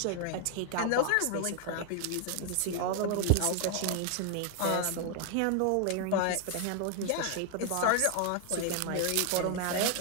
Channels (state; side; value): different; both; correlation 0.00